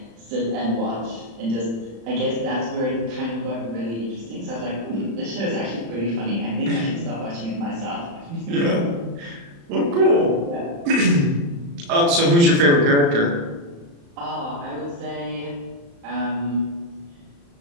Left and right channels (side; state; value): left; late; 35 ms